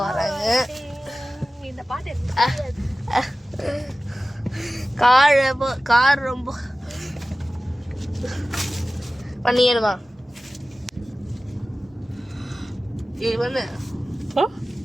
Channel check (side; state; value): both; normal; correlation 0.96